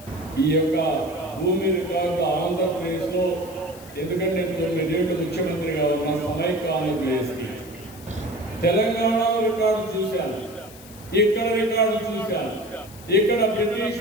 ఈ యొక్క భూమి రికార్డు ఆంధ్రప్రదేశ్లో, ఎందుకంటే 9 ఏళ్ళు ముఖ్యమంత్రిగా ఉన్న సమైక్య ఆంధ్రప్రదేశ్కి తెలంగాణలో రికార్డు చూశాను, ఇక్కడ రికార్డు చూశాను. ఇక్కడ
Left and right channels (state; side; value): noise; left; hiss, 20 dB below the sound